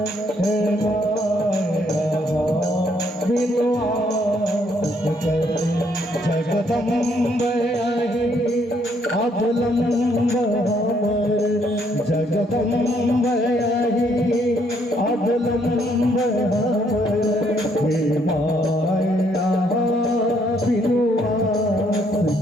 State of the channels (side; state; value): both; normal; correlation 0.69